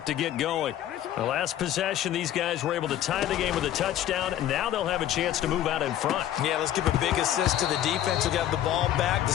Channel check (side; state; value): right; quieter; 11.8 dB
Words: to get going. The last possession, these guys were able to tie the game with a touchdown, and now they'll have a chance to move out in front. Yeah, let's give a big assist to the defense who got the ball back. The